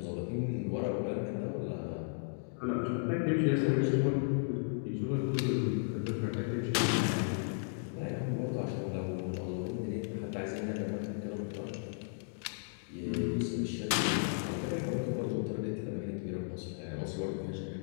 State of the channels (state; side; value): silent; right; digital silence